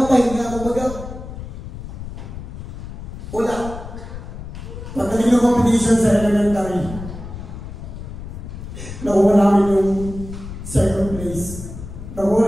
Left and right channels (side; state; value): left; noise; rumble, 10 dB below the sound